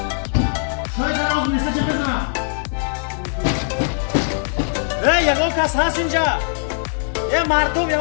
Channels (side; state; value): right; silent; 65 dB below the other